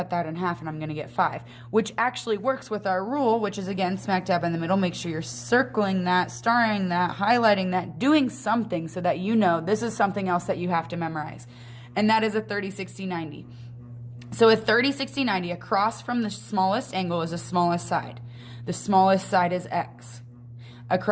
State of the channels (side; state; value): both; identical; correlation 1.00